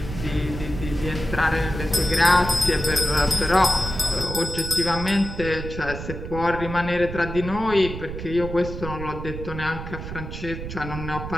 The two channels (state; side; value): noise; right; rumble, 8 dB below the sound